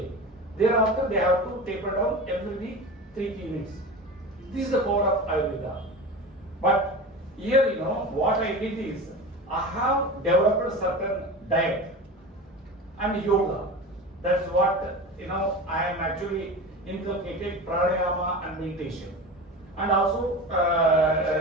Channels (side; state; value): both; normal; correlation 0.30